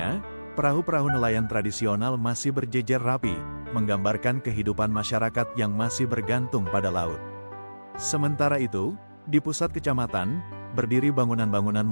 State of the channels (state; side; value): inverted; both; correlation -1.00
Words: perahu-perahu nelayan tradisional masih berjejer rapi, menggambarkan kehidupan masyarakat yang masih bergantung pada laut. Sementara itu, di pusat kecamatan, berdiri bangunan-bangunan